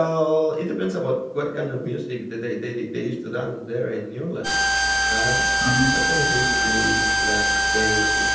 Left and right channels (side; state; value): both; identical; correlation 1.00